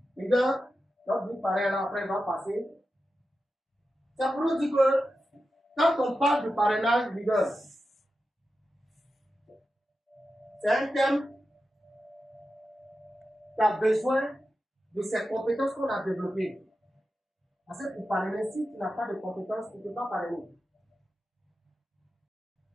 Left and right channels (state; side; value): normal; both; correlation 0.91